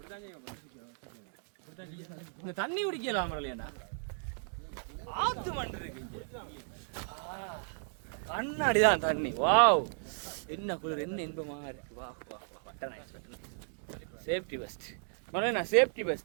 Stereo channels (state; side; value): silent; left; digital silence